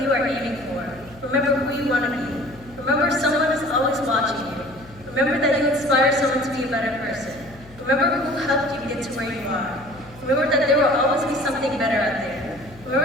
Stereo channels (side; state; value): left; noise; hum, 21 dB below the sound